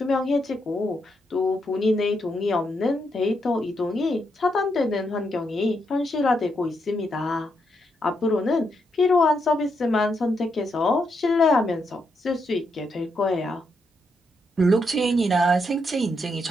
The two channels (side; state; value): both; normal; correlation 0.80